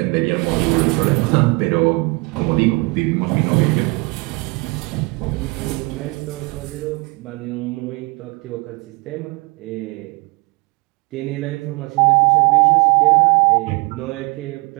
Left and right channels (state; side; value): quieter; left; 27.5 dB